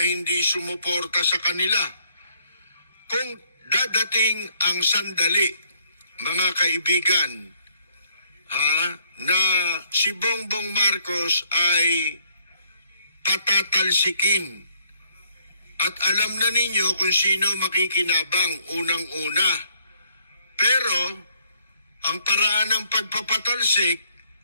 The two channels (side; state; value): both; inverted; correlation -0.66